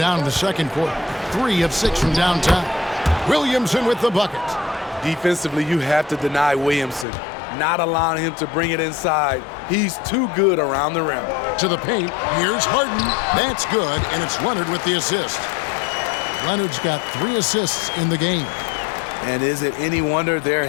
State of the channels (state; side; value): drops out; right; at 7.1 s